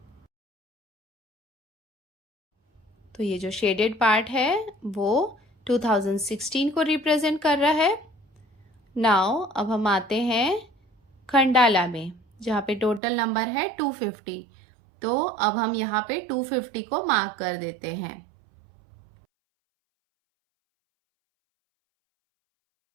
तो ये जो शेडेड पार्ट है वो 2016 को रिप्रेजेंट कर रहा है। नाउ अब हम आते हैं खंडाला में, जहाँ पे टोटल नंबर है 250। तो अब हम यहाँ पे 250 को मार्क कर देते हैं।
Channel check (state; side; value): drops out; left; at 13.0 s